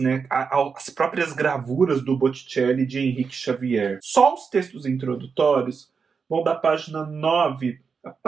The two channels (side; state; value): left; quieter; 5.6 dB